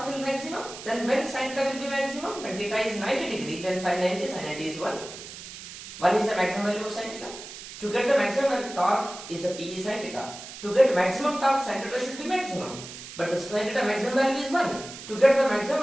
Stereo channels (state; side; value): noise; right; hiss, 13 dB below the sound